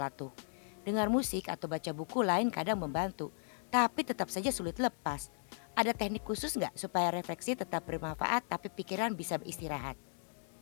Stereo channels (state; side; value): silent; right; digital silence